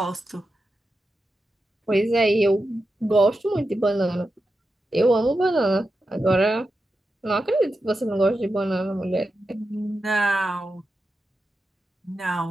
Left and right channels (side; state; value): both; normal; correlation 0.90